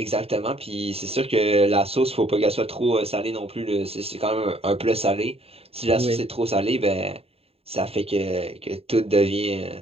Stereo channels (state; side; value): late; left; 0.29 ms